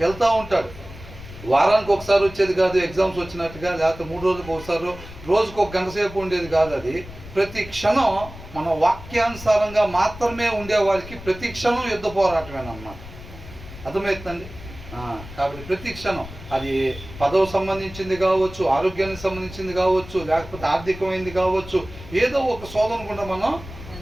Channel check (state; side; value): noise; left; rumble, 15 dB below the sound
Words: ఉంటాడు. వారానికి ఒకసారి వచ్చేది కాదు ఎగ్జామ్స్ వచ్చినట్టుగా, లేకపోతే 3 రోజులకు ఒకసారి, రోజుకు 1 గంట సేపు ఉండేది కాదు. అది ప్రతి క్షణం మన వాక్యానుసారంగా మాత్రమే ఉండేవారికి ప్రతి క్షణం యుద్ధ పోరాటమేనమాట. అర్థమవుతుందండి? కాబట్టి ప్రతి క్షణం అది పదవి సంబంధించింది కావచ్చు, ఆరోగ్యానికి సంబంధించింది కావచ్చు, లేకపోతే ఆర్థికమైంది కావచ్చు, ఏదో ఒక శోధన కూడా మనం